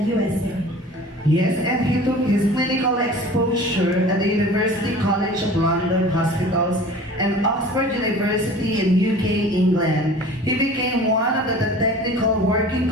USA. Yes, and he took his clinical exposure at the University College of London Hospitals and Oxford University in UK, England. He became one of the technical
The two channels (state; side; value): normal; both; correlation 0.42